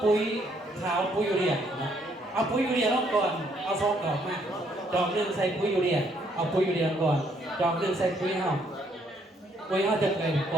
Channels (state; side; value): normal; both; correlation 0.69